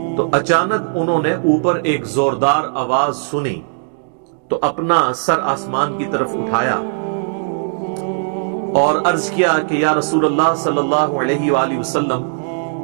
تو اچانک انہوں نے اوپر ایک زوردار آواز سنی تو اپنا سر آسمان کی طرف اٹھایا اور عرض کیا کہ یا رسول اللہ صلی اللہ علیہ وآلہ وسلم،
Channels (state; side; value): silent; left; digital silence